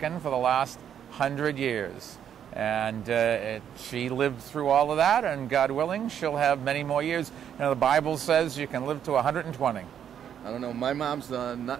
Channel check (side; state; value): left; quieter; 9.1 dB